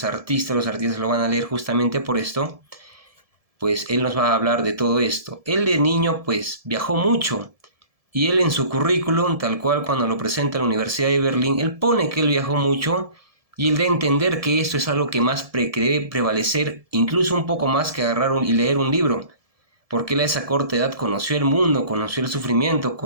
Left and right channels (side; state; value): left; late; 1.7 ms